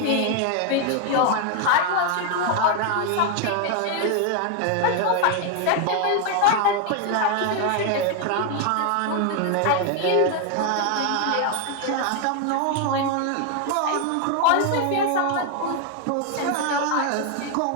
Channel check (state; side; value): different; both; correlation 0.01